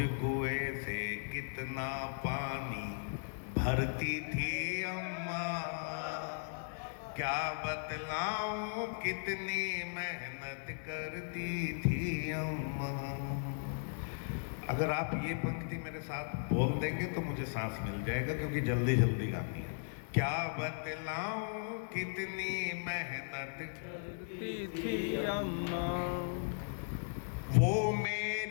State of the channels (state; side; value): silent; right; digital silence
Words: कुएं से कितना पानी भरती थी अम्मा, क्या बतलाऊं कितनी मेहनत करती थी अम्मा। अगर आप ये पंक्ति मेरे साथ बोल देंगे तो मुझे सांस मिल जाएगा, क्योंकि जल्दी जल्दी गानी है। क्या बतलाऊं कितनी मेहनत करती थी अम्मा, वो